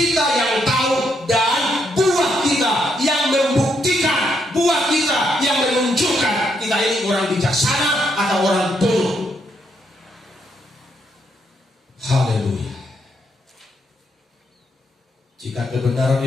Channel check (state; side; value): normal; both; correlation 0.77